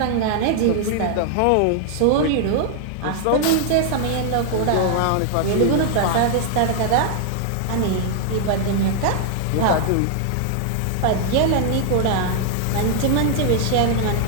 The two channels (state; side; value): different; both; correlation 0.00